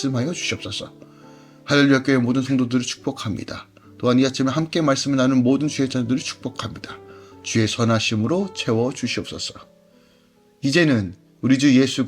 주시옵소서. 할렐루야 교회 모든 성도들을 축복합니다. 또한 이 아침에 함께 말씀을 나눈 모든 주의 자녀들을 축복합니다. 주의 선하심으로 채워 주시옵소서. 이제는 우리 주 예수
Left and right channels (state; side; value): identical; both; correlation 1.00